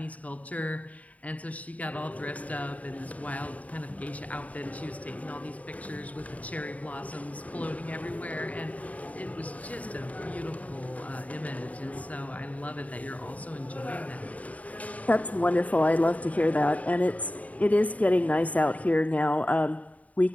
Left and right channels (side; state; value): right; late; 0.070 ms